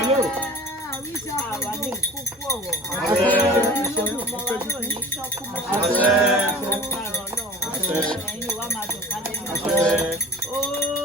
Àwa ní kúkú ọ̀wọ̀. Ọmọ wa náà ní ṣọ́kú mọ́. Lágbára Ọlọ́run. Ẹ̀yin wa máa dùn ká lẹ́nu.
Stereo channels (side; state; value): both; normal; correlation 0.40